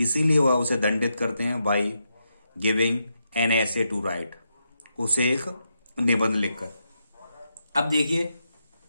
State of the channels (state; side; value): inverted; both; correlation -0.83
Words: वह उसे दंडित करते हैं, बाई गिविंग एन ऐसे टू राइट, उसे एक निबंध लिखकर। अब देखिए